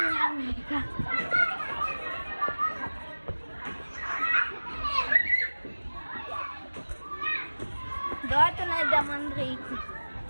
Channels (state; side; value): inverted; both; correlation -1.00